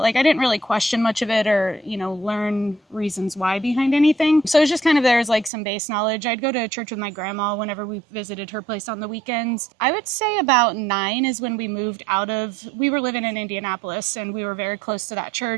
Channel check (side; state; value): left; drops out; at 5.5 s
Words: like I didn't really question much of it, or, you know, learn reasons why behind anything. So it's just kind of, there's like some base knowledge. I'd go to church with my grandma whenever we visited her place on the weekends. I would say about 9 is when we moved we were living in Indianapolis, and we were very close to that